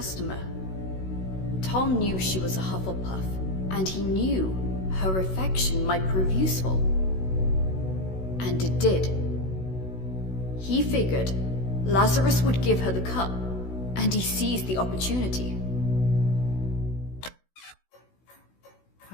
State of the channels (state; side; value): late; right; 16 ms